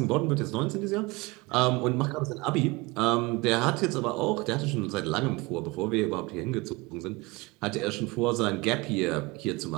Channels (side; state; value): left; quieter; 23.7 dB